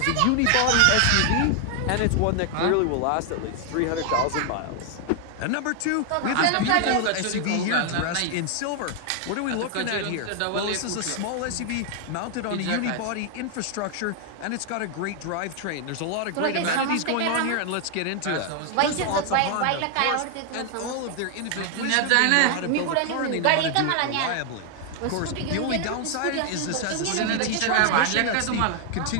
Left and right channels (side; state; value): both; different; correlation 0.00